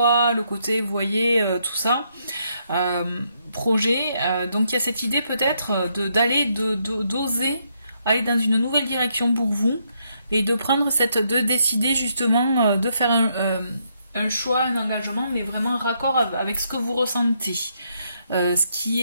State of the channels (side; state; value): both; inverted; correlation -0.76